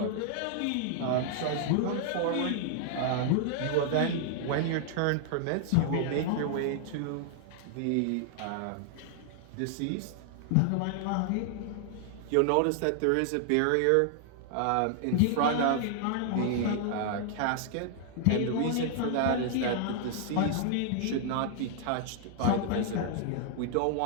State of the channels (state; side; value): different; both; correlation 0.00